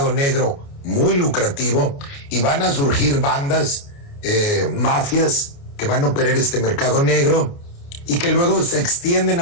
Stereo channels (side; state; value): right; late; 29 ms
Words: negro muy lucrativo, y van a surgir bandas, mafias, que van a operar este mercado negro y que luego se extienden